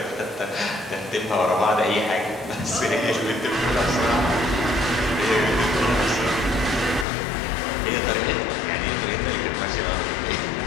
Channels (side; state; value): right; drops out; at 7.1 s